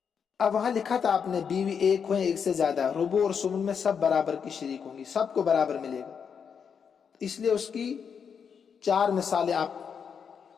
اب وہاں لکھا تھا آپ نے بیوی 1 ہو یا 1 سے زیادہ، ربع اور سمن میں سب برابر کی شریک ہوں گی، سب کو برابر ملے گا، اس لیے اس کی 4 مثالیں آپ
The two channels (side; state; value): right; quieter; 6.8 dB